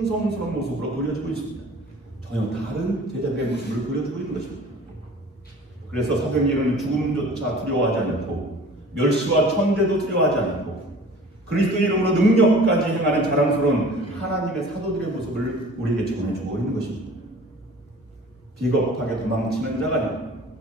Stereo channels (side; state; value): both; normal; correlation 0.45